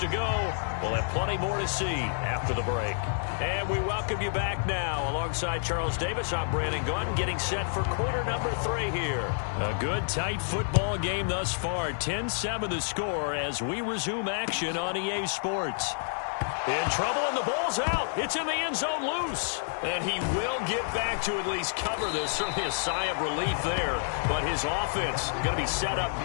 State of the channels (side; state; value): right; silent; digital silence